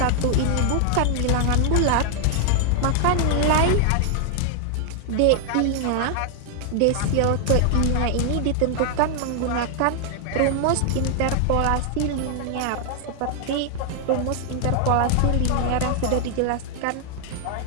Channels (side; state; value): both; different; correlation 0.00